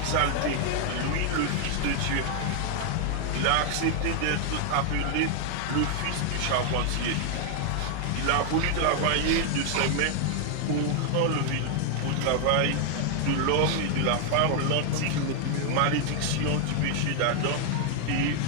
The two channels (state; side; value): different; both; correlation 0.00